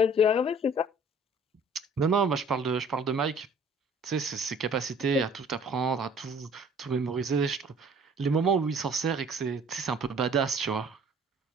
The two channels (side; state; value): both; normal; correlation 0.53